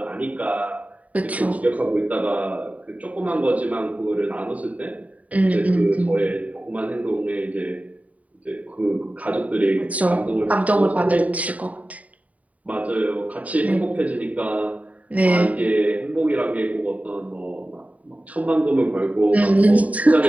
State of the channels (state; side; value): late; left; 0.069 ms